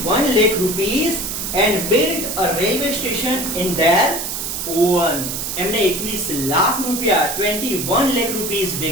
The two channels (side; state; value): right; noise; hiss, 4 dB below the sound